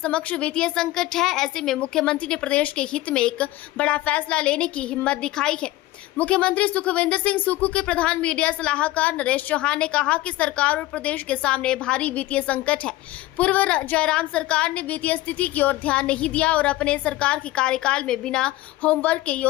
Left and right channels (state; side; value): quieter; right; 17.0 dB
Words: वित्तीय संकट है, ऐसे में मुख्यमंत्री ने प्रदेश के हित में एक बड़ा फैसला लेने की हिम्मत दिखाई है। मुख्यमंत्री सुखविंदर सिंह सुक्खू के प्रधान मीडिया सलाहकार नरेश चौहान ने कहा कि सरकार और प्रदेश के सामने भारी वित्तीय संकट है। पूर्व जयराम सरकार ने वित्तीय स्थिति की ओर ध्यान नहीं दिया और अपने सरकार के कार्यकाल में बिना होमवर्क के